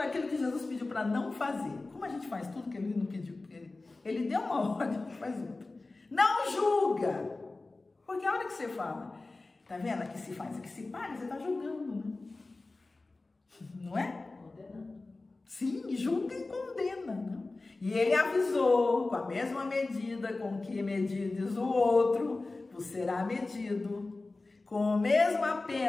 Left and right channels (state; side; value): quieter; right; 3.3 dB